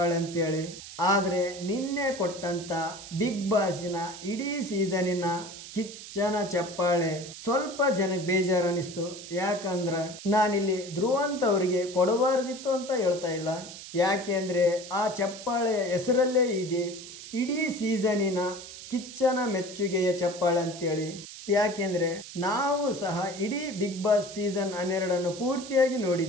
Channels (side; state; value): right; noise; hiss, 13 dB below the sound